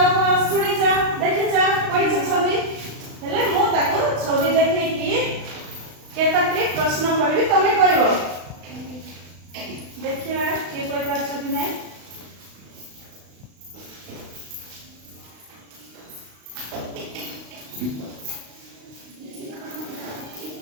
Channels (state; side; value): late; left; 35 ms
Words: ଶୁଣିଛ ଦେଖିଛ ପଢିଛ ଛବି ହେଲେ ମୁଁ ତାକୁ ଛବି ଦେଖେଇକି କେତଟି ପ୍ରଶ୍ନ କରିବି ତମେ କହିବ। ଦେଖିବା କିଏ କହିପାରୁଛ କି ନାହିଁ।